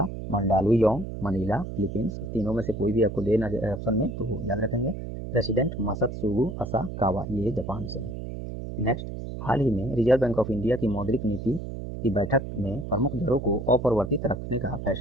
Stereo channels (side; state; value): right; noise; hum, 7 dB below the sound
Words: मंडालुयोंग, मनीला, फिलीपींस। तीनों में से कोई भी आपको देना ऑप्शन में तो याद रखेंगे। प्रेसिडेंट मसत्सुगु असाकावा, ये जापान से है। नेक्स्ट, हाल ही में रिजर्व बैंक ऑफ इंडिया की मौद्रिक नीति की बैठक में प्रमुख दरों को अपरिवर्तित रखने का